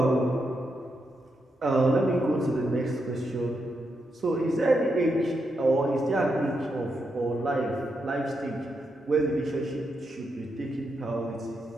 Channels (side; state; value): both; normal; correlation 0.83